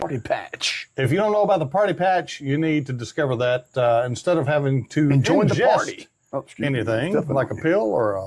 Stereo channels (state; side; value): identical; both; correlation 1.00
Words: Patch. If you don't know about the Party Patch, you need to discover that instead of having to Join the ingest party. anything like a pill or